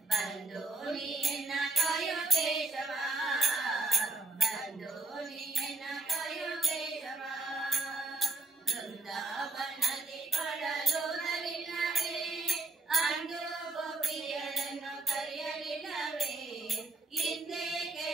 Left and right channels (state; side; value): quieter; left; 3.1 dB